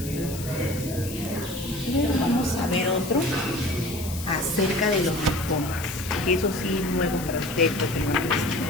Luego vamos a ver otro acerca de los linfomas, que eso sí es nuevo para ustedes, ustedes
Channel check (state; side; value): noise; left; hiss, 11 dB below the sound